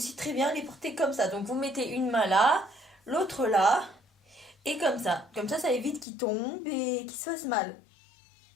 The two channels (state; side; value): drops out; right; at 6.1 s